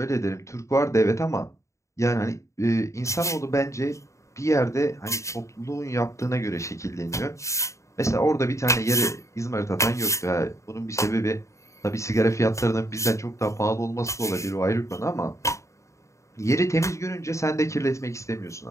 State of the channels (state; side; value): late; right; 0.14 ms